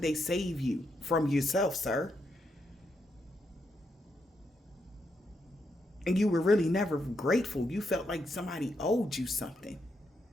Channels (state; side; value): normal; both; correlation 0.80